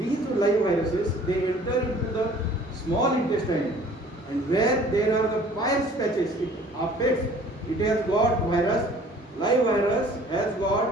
live viruses, they enter into the small intestine, and where there are the Peyer's patches, it affects. It has got virus. Live virus has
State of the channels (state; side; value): normal; both; correlation 0.52